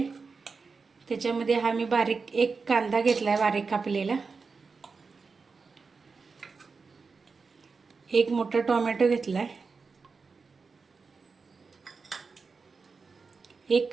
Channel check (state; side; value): quieter; left; 4.7 dB